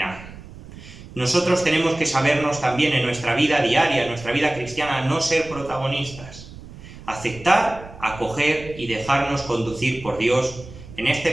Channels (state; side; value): noise; right; rumble, 16 dB below the sound